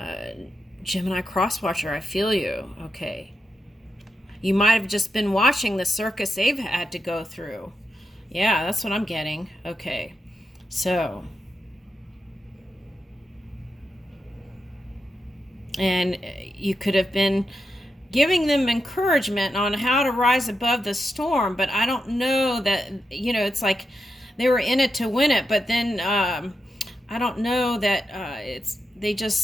Gemini Crosswatcher, I feel you. Okay. You might have just been watching the circus they've had to go through. Yeah, that's what I'm getting. Okay, so. And you could have been giving them encouragement on how to rise above the storm, but I don't know that, you know, it's like they were in it to win it, but then I don't know that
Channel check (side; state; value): both; normal; correlation 0.87